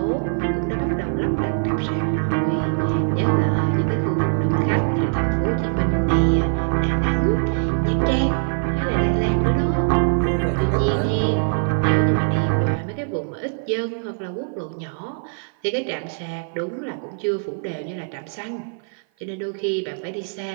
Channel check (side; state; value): left; silent; 56 dB below the other